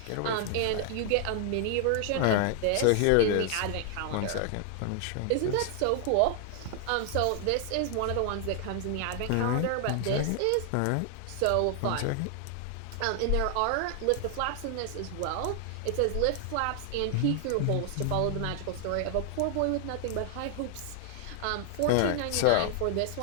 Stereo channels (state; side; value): different; both; correlation 0.00